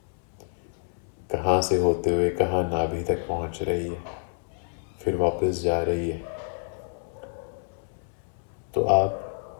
कहाँ से होते हुए कहाँ नाभि तक पहुँच रही है, फिर वापस जा रही है। तो आप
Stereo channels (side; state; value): right; silent; 60 dB below the other